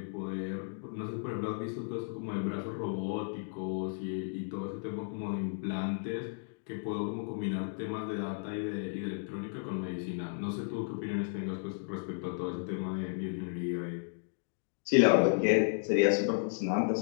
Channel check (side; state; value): right; silent; digital silence